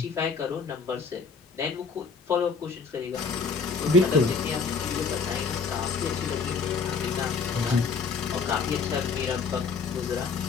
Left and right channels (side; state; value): right; quieter; 5.0 dB